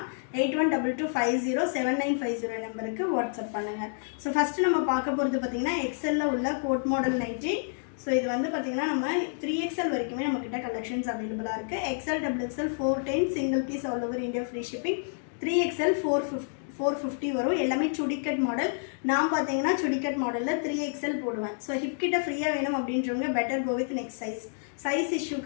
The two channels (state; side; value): silent; right; digital silence